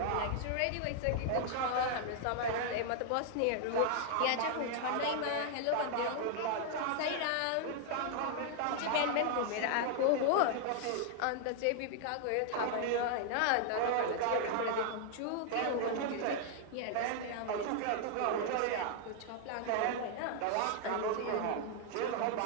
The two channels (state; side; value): different; both; correlation 0.00